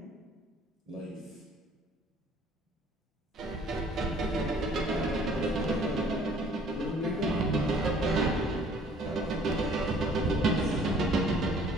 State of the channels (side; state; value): both; normal; correlation 0.56